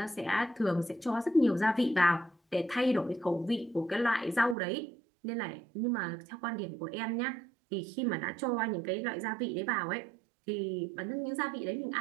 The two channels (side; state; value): left; drops out; at 4.5 s